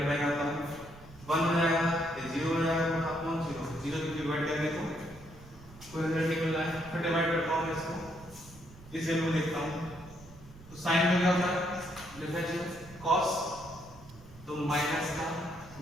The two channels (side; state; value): right; noise; rumble, 20 dB below the sound